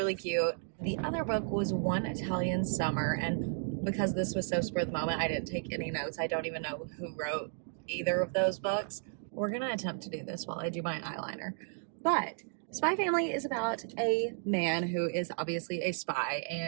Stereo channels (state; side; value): silent; left; digital silence